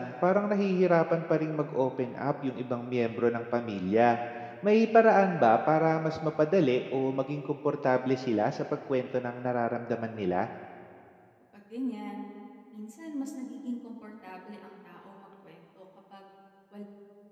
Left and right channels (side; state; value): both; identical; correlation 1.00